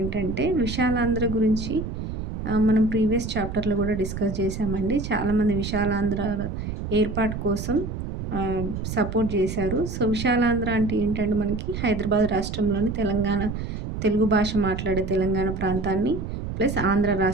విశాలాంధ్ర గురించి మనం ప్రీవియస్ చాప్టర్లో కూడా డిస్కస్ చేశామండి. చాలామంది విశాలాంధ్ర ఏర్పాటు కోసం సపోర్ట్ చేశారు. సో విశాలాంధ్ర అంటే ఏంటంటే మనకి హైదరాబాద్ రాష్ట్రంలోని తెలుగు భాష మాట్లాడే తెలంగాణ ప్రాంతాన్ని ప్లస్ ఆంధ్ర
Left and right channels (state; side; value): noise; right; rumble, 6 dB below the sound